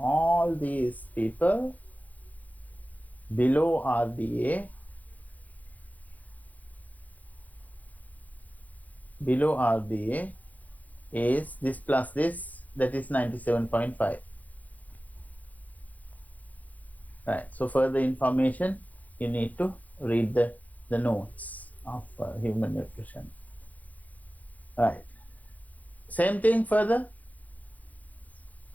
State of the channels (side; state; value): right; late; 0.078 ms